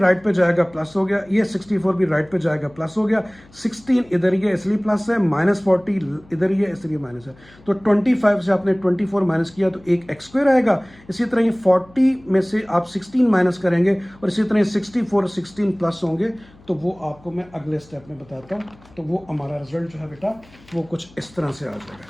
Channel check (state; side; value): noise; left; hum, 26 dB below the sound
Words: पे जाएगा प्लस हो गया, ये 64 भी राइट पे जाएगा प्लस हो गया। 16 इधर ये इसलिए प्लस है, -40 इधर ये इसलिए माइनस है। तो 25 से आपने 24 माइनस किया तो एक x² आएगा। इसी तरह ये 40 में से आप 16 माइनस करेंगे और इसी तरह 64 16 प्लस होंगे, तो वो आपको मैं अगले स्टेप में बताता हूँ। तो वो हमारा रिजल्ट जो है बेटा वो कुछ इस तरह से आ